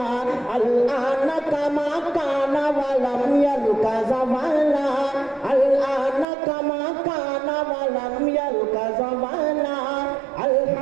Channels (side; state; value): left; drops out; at 6.2 s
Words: الآن كما كان ولم يلق زمانا الآن كما كان ولم يلق زمانا